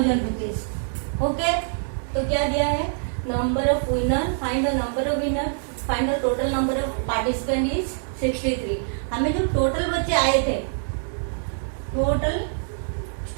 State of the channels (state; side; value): silent; left; 62 dB below the other